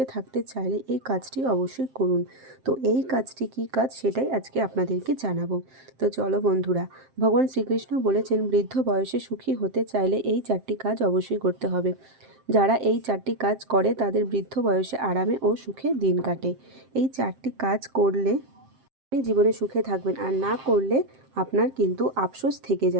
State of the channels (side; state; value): left; late; 7.6 ms